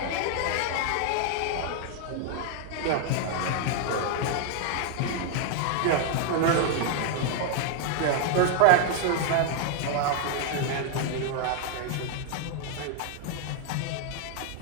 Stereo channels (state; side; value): different; both; correlation 0.00